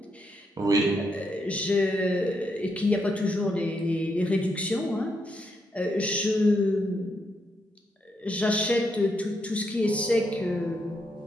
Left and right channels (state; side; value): normal; both; correlation 0.79